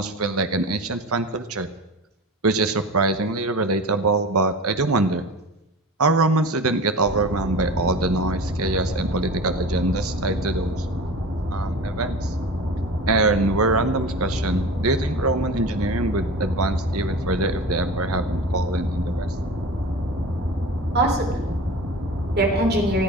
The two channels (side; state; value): both; normal; correlation 0.32